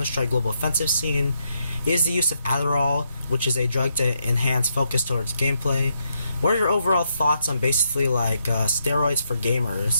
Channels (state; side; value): inverted; both; correlation -0.79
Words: Global Offensive scene is the use of Adderall, which is a drug to enhance focus towards gameplay. What are your overall thoughts on basically like steroids for